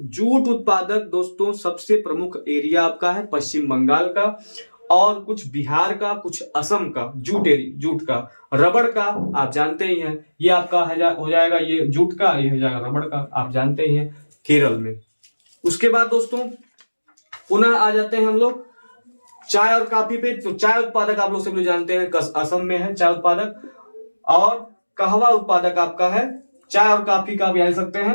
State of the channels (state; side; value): inverted; both; correlation -1.00